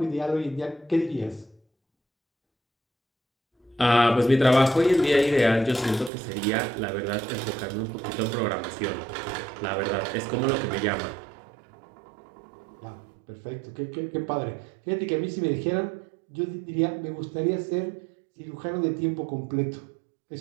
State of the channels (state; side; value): drops out; left; at 6.1 s